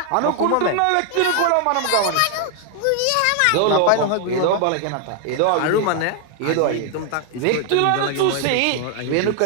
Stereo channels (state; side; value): different; both; correlation 0.00